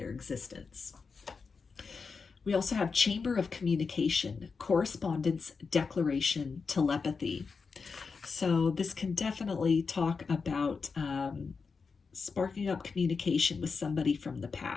existence. We also have chamber of communication, correspondence, declaration, telepathy. So this can definitely talk about sparking up communication with somebody from the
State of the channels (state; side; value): quieter; right; 5.0 dB